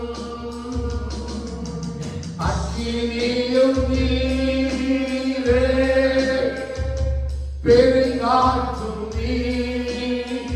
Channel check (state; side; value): identical; both; correlation 1.00